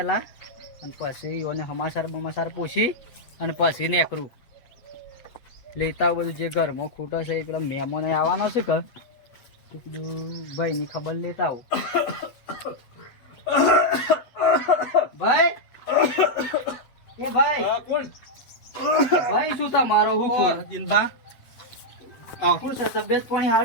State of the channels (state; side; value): late; right; 8.1 ms